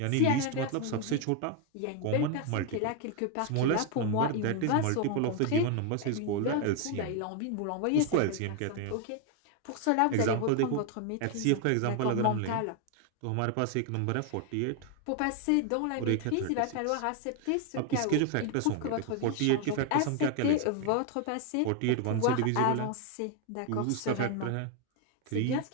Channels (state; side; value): different; both; correlation 0.01